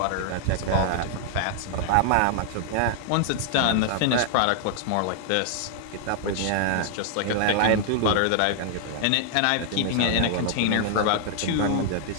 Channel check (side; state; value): both; different; correlation 0.00